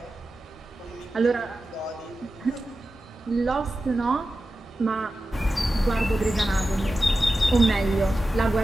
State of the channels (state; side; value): normal; both; correlation 0.93